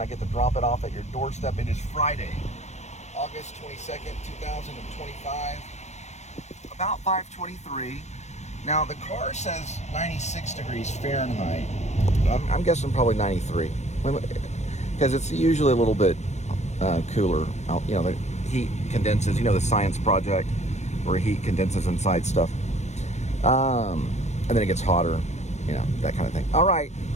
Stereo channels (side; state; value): right; late; 0.33 ms